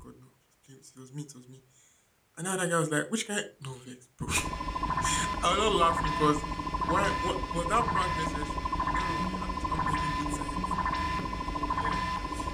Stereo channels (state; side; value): identical; both; correlation 1.00